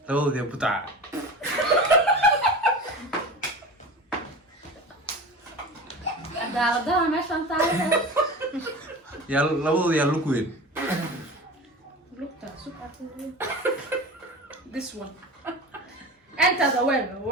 labadooda yaa butaca. دار ماشي انت عارف yaa labadooda yaa lug weyn. lookta this one انت the web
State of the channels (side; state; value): both; normal; correlation 0.33